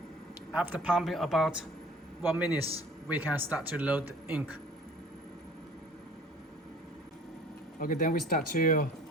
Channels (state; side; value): normal; both; correlation 0.49